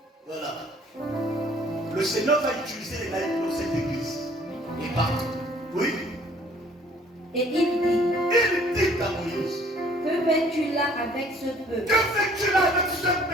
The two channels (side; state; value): both; normal; correlation 0.57